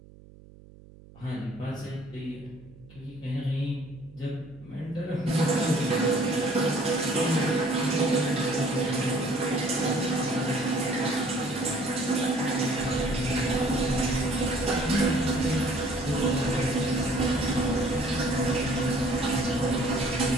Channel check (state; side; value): noise; right; hum, 22 dB below the sound